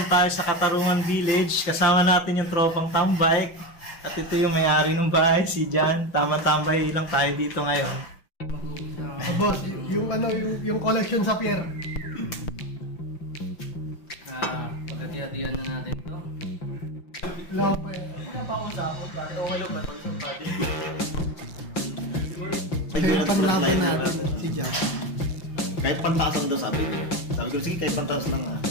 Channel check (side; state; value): right; late; 5.8 ms